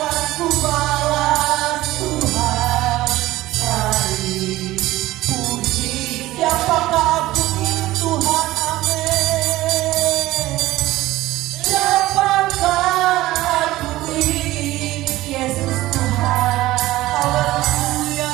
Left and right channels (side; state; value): left; quieter; 16.9 dB